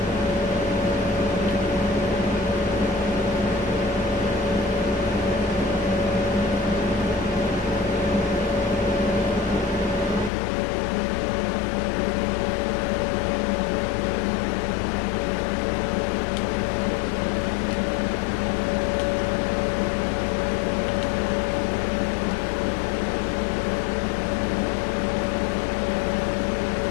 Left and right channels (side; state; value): right; drops out; at 10.3 s